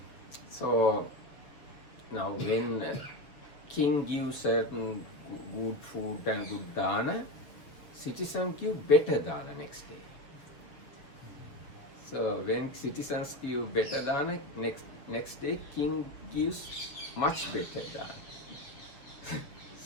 So now when king gives certain good food and good dana, citizens give better dana next day. So when citizens give better dana, next day king gives much better dana.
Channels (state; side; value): late; right; 6.9 ms